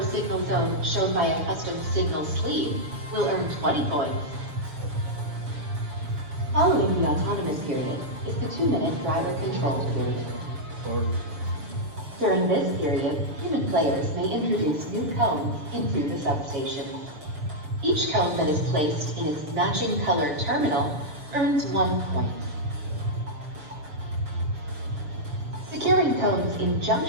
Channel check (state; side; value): late; left; 6.9 ms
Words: zone shown by a custom signal sleeve will earn 20 points. Following the autonomous period is the 2-minute driver-controlled period. During this period, human players may introduce new cones into the substation. Each cone that is placed in its matching color terminal earns 1 point. Securing cones in